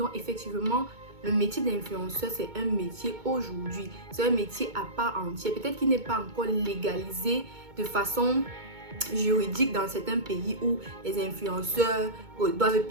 effectivement, le métier d'influenceur, c'est un métier aujourd'hui. C'est un métier à part entière. Peut-être qu'il n'est pas encore légalisé de façon juridique dans certains pays où les influenceurs doivent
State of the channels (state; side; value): late; left; 2.2 ms